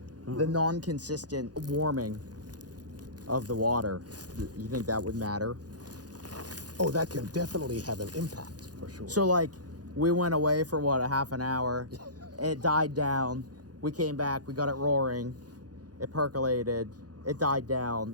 The non-consistent warming of the water. You think that would matter? Oh, that can definitely have an impact for sure. So like, we went away for what, a half an hour. It died down. We came back. We got it roaring. It percolated. It died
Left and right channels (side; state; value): left; late; 0.69 ms